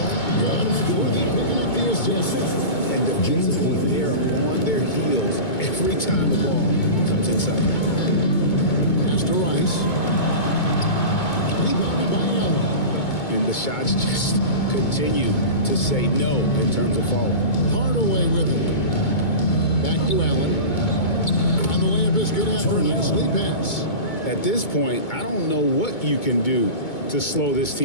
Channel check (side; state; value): right; late; 2.2 ms